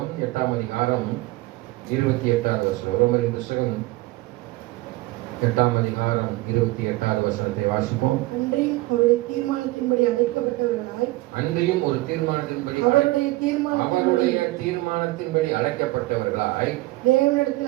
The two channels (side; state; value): left; quieter; 19.9 dB